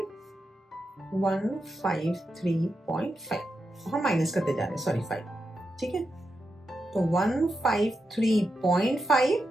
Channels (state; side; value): normal; both; correlation 0.87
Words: 153.5, हम माइनस करते जा रहे हैं, सॉरी 5, ठीक है। तो 153.5,